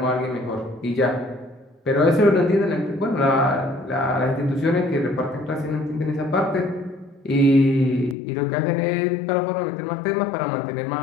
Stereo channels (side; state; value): right; drops out; at 8.2 s